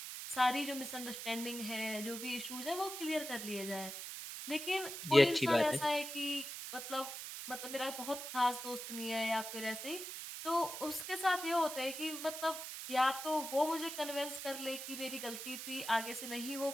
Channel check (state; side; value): noise; right; hiss, 7 dB below the sound